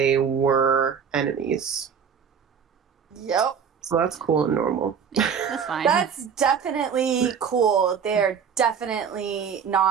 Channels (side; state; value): left; quieter; 7.0 dB